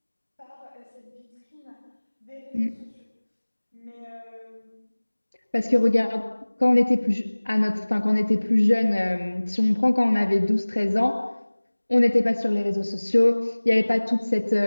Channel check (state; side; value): inverted; both; correlation -1.00